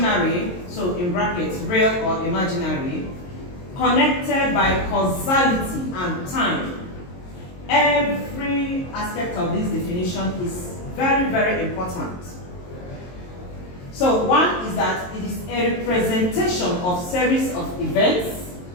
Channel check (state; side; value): late; right; 22 ms